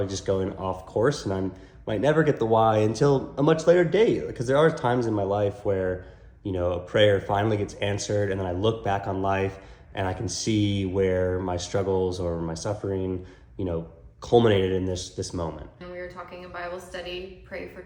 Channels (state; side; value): identical; both; correlation 1.00